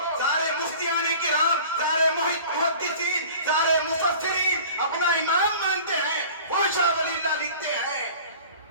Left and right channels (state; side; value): inverted; both; correlation -0.43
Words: سارے مفتیان کرام، سارے محدثین، سارے مفسرین اپنا امام مانتے ہیں، وہ شاہ ولی اللہ لکھتے ہیں